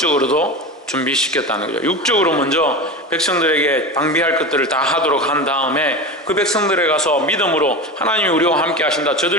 준비시켰다는 거죠. 육적으로 먼저 백성들에게 방비할 것들을 다 하도록 한 다음에 그 백성들에 가서 믿음으로 하나님이 우리와 함께 하신다.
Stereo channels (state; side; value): normal; both; correlation 0.26